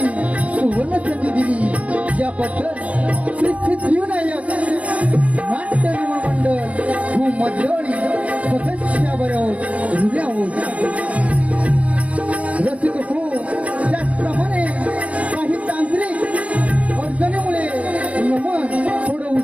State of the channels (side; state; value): left; late; 0.065 ms